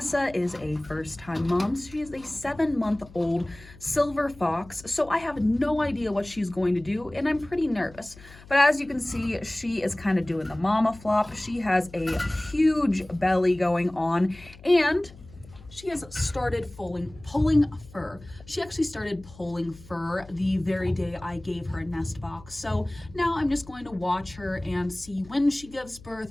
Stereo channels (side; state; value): left; noise; hum, 20 dB below the sound